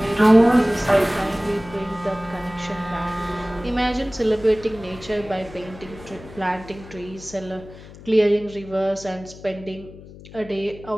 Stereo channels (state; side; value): noise; left; hum, 18 dB below the sound